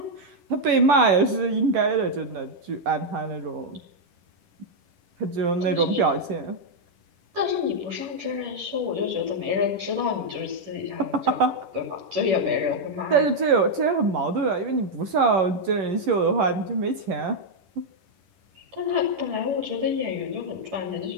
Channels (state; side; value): late; left; 10 ms